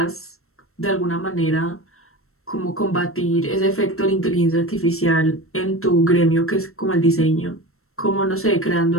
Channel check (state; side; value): late; right; 0.63 ms